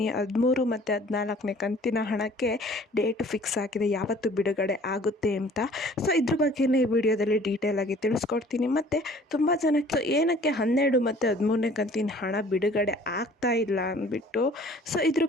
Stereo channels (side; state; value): both; normal; correlation 0.52